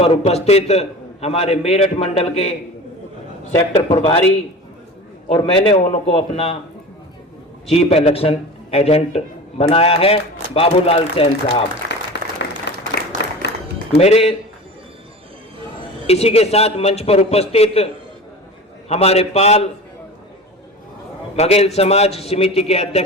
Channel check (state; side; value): normal; both; correlation 0.34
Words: उपस्थित हमारे मेरठ मंडल के सेक्टर प्रभारी और मैंने उनको अपना चीफ इलेक्शन एजेंट बनाया है बाबूलाल सैन साहब, मेरे इसी के साथ मंच पर उपस्थित हमारे पाल बघेल समाज समिति के